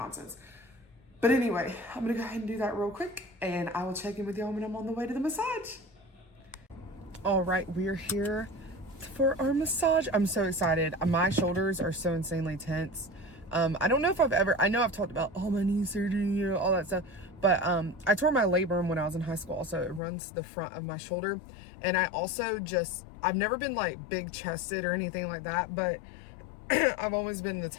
But anyway, I'm gonna go ahead and do that real quick, and I will check in with y'all when I'm on the way to the massage. All right, we're here for our massage. I'm so excited. My shoulders are so insanely tense. I don't know if I know I've talked about all my knee surgery, you know, all that stuff, but I tore my labrum when I was in high school, so it runs the front of my shoulder. And I also I've never been like big chested or anything like that, but I've always been the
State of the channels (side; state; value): right; drops out; at 20.0 s